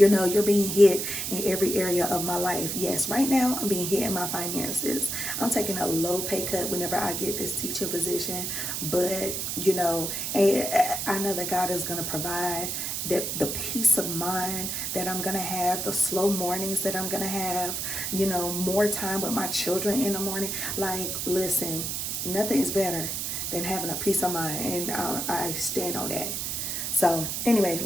know, you're being hit in every area of my life. Yes, right now I'm being hit in my finances. I'm taking a low pay cut whenever I get this teaching position, but you know, I know that God is going to provide that, the peace of mind that I'm going to have, the slow mornings that I'm going to have, you know, more time with my children in the morning. Like, listen, nothing is better than having a peace of mind, and I stand on that. So anyway,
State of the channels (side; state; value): right; noise; hiss, 2 dB below the sound